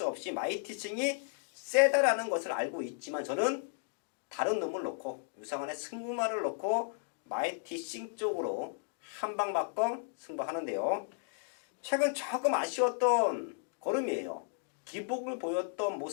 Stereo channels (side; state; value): right; silent; digital silence